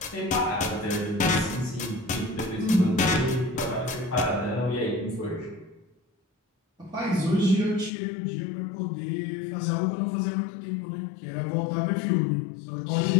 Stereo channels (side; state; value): right; drops out; at 7.9 s